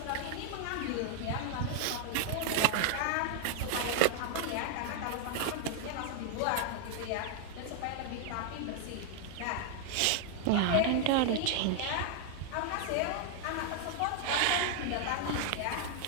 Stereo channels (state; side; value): different; both; correlation 0.00